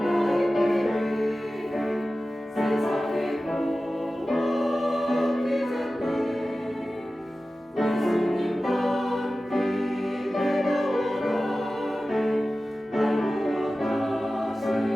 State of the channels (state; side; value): normal; both; correlation 0.95